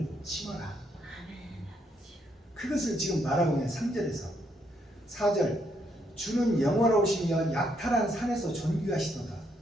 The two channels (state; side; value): normal; both; correlation 0.74